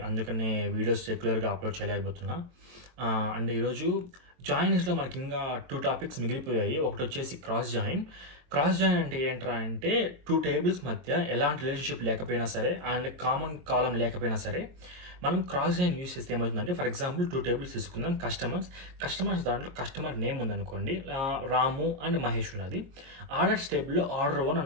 అందుకనే వీడియోస్ రెగ్యులర్‌గా అప్‌లోడ్ చేయలేకపోతున్నా. అండ్ ఈరోజు జాయినింగ్స్‌లో మనకింకా 2 టాపిక్స్ మిగిలిపోయాయి. ఒకటొచ్చేసి క్రాస్ జాయిన్. క్రాస్ జాయిన్ అంటే ఏంట్రా అంటే 2 టేబుల్స్ మధ్య ఎలాంటి రిలేషన్‌షిప్ లేకపోయినా సరే అండ్ కామన్ కాలమ్ లేకపోయినా సరే మనం క్రాస్ జాయిన్ యూజ్ చేస్తే ఏమవుతుందంటే ఫర్ ఎగ్జాంపుల్ 2 టేబుల్స్ తీసుకుందాం. కస్టమర్స్ దాంట్లో కస్టమర్ నేమ్ ఉందనుకోండి. రాము అండ్ మహేష్ ఉన్నది. ఆర్డర్స్ టేబుల్‌లో ఆర్డర్ 1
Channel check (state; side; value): late; left; 23 ms